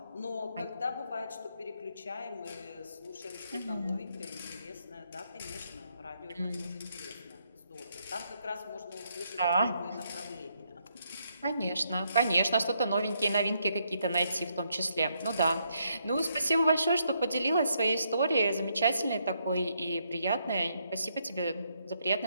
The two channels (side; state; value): both; inverted; correlation -0.76